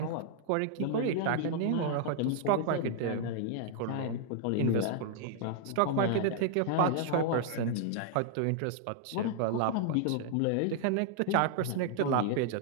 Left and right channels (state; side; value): different; both; correlation 0.00